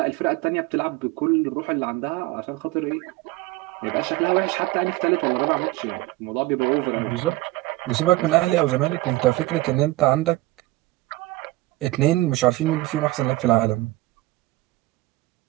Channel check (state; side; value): quieter; left; 19.1 dB